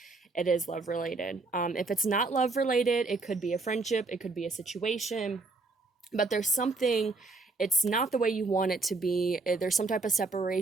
it is love related. If it's not love related, it could be a friendship, it could be a situation, but there's something, it's not the way you want it to be. There's some type of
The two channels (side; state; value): left; quieter; 3.6 dB